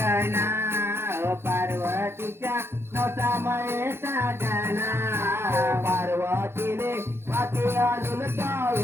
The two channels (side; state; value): left; late; 0.12 ms